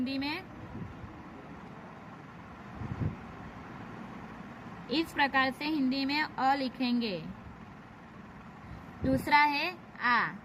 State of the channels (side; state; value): both; identical; correlation 1.00